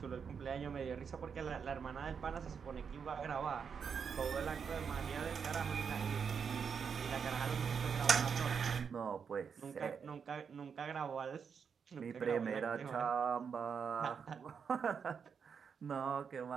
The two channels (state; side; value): quieter; left; 6.5 dB